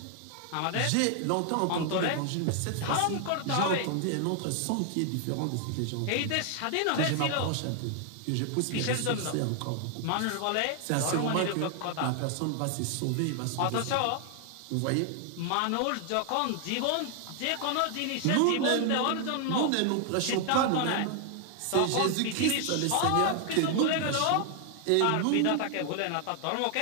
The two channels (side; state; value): both; different; correlation 0.00